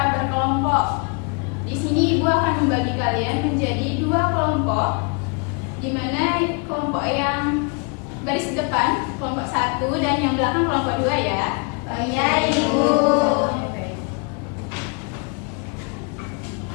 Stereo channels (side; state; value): right; quieter; 34.1 dB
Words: berkelompok. Di sini Ibu akan membagi kalian menjadi 2 kelompok, di mana kelompok yang baris depan kelompok 1 dan yang belakang kelompok 2 ya. Iya, Ibu.